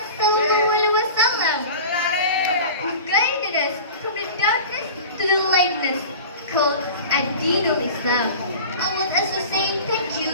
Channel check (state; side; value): inverted; both; correlation -0.36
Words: Sallallahu Alaihi Wasallam, who guided us from the darkness to the lightness, called Ad-Dinul Islam. I would also say thank